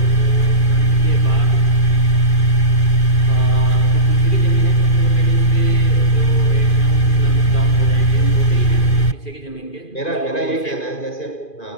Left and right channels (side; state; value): right; late; 2.4 ms